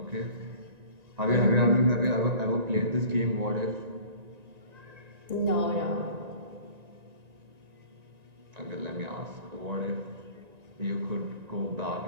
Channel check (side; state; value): left; late; 1.9 ms